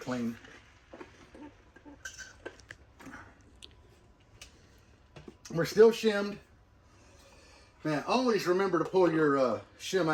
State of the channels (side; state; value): both; identical; correlation 1.00